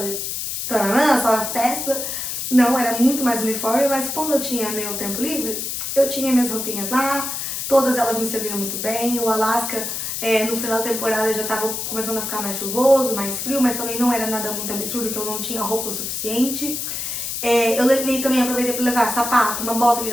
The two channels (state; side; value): noise; left; hiss, 4 dB below the sound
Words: e taranã, só a festa. Não, era muito mais uniforme, mas quando eu tinha meu tempo livre, eu tinha minhas roupinhas lá, todas elas me serviram muito bem. O Alasca, no final da temporada já tava começando a ficar mais chuvoso, mais frio, mas também não era nada muito absurdo, que eu não tinha roupa o suficiente. Eu levei também, aproveitei para levar sapato, uma bota que